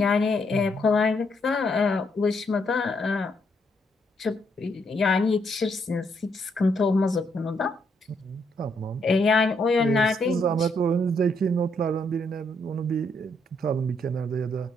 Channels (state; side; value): normal; both; correlation 0.74